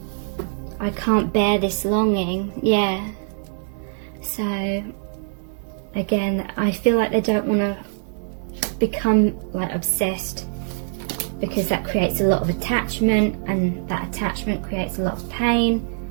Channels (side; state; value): left; silent; 63 dB below the other